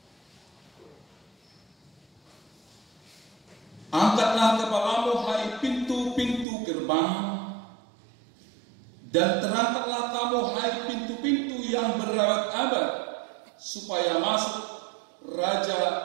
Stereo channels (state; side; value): drops out; left; at 6.5 s